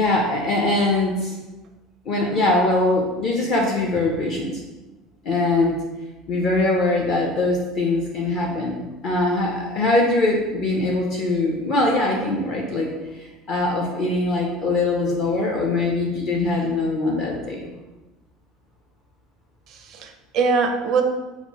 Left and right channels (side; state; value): both; normal; correlation 0.41